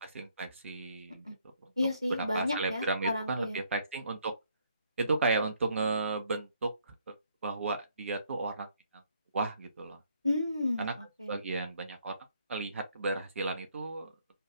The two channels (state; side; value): inverted; both; correlation -0.67